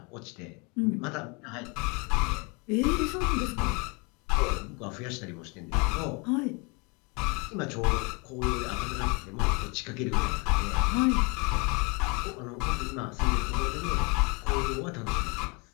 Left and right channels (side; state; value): right; quieter; 30.6 dB